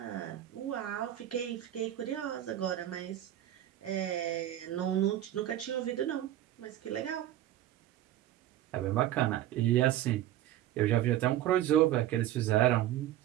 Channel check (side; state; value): left; quieter; 12.9 dB